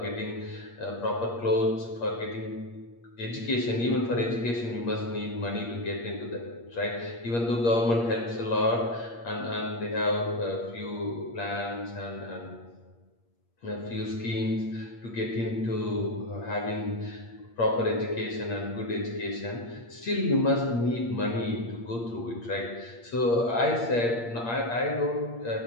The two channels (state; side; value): late; right; 8.6 ms